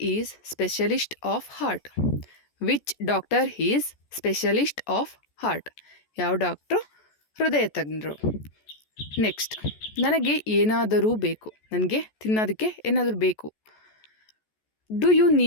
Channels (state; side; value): late; right; 14 ms